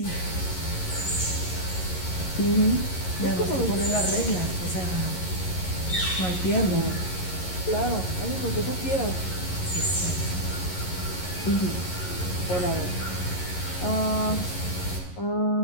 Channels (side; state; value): right; late; 11 ms